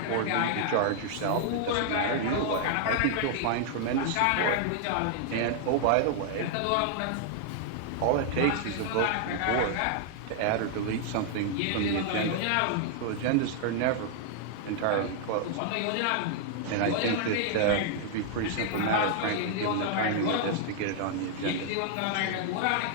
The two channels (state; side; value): different; both; correlation -0.01